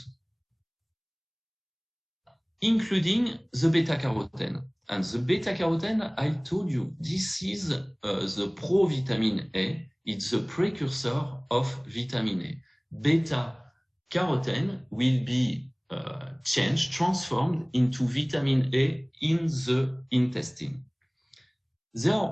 including the beta-carotene. And the beta-carotene, I told you, this is the provitamin A. It's the precursor of vitamin A. Beta-carotene will be transformed into vitamin A in the intestine. There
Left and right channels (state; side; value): identical; both; correlation 1.00